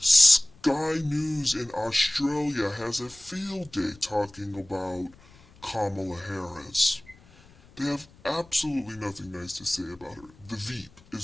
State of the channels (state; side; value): noise; left; rumble, 26 dB below the sound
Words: News in Australia has a field day talking about Kamala Harris. They have absolutely nothing nice to say about her. The Veep